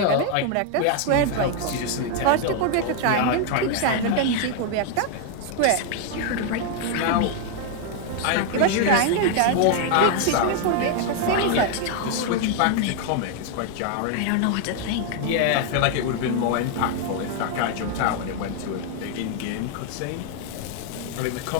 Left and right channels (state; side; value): different; both; correlation 0.00